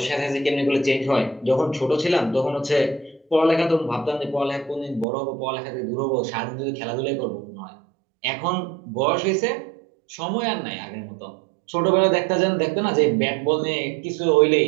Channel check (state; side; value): drops out; left; at 5.1 s